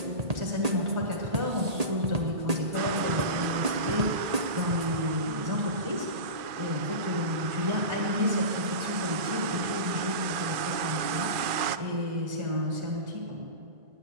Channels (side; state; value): left; late; 2.4 ms